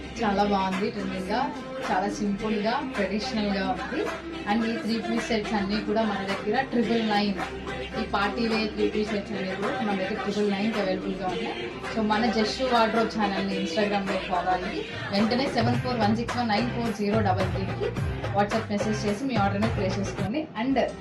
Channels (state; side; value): identical; both; correlation 1.00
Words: చాలా బాగుంది. Trending గా, చాలా సింపుల్ గా, ట్రెడిషనల్ గా ఉంది. అండ్ ఈ 3-piece సెట్స్ అన్ని కూడా మన దగ్గర 999. ఈ పార్టీ వేర్ 3-piece సెట్స్ అనేవి కూడా మన దగ్గర 999 అవైలబుల్ గా ఉన్నాయి. సో మన జస్ట్ వార్డ్రోబ్ ఛానల్ ని ఇన్స్టాగ్రామ్ లో ఫాలో అయ్యి వెంటనే 7416194033కి వాట్సాప్ మెసేజ్ చేసి మీ ఆర్డర్ ని ప్లేస్ చేసుకోండి. అండ్